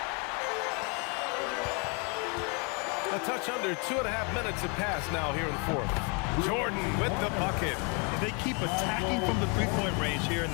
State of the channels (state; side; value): quieter; right; 34.5 dB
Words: A touch under 2.5 minutes have passed now here in the 4th. Jordan with the bucket. They keep attacking from the three-point range here in